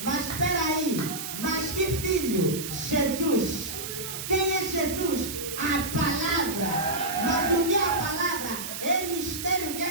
Mas espera aí, mas que Filho? Jesus. Quem é Jesus? A palavra. Mas o que é a palavra? É mistério que é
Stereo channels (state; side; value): noise; right; hiss, 7 dB below the sound